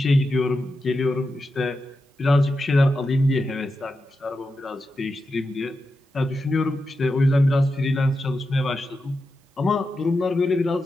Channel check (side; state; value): both; normal; correlation 0.89